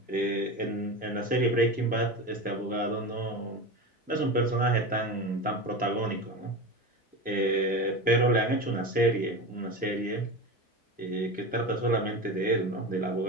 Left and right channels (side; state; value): both; normal; correlation 0.25